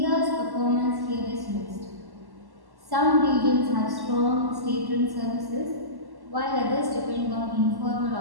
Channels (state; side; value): late; left; 1.1 ms